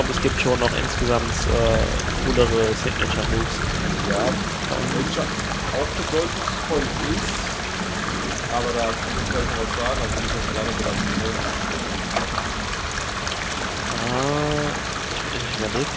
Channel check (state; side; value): identical; both; correlation 1.00